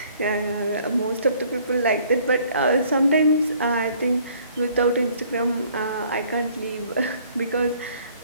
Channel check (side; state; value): both; inverted; correlation -0.59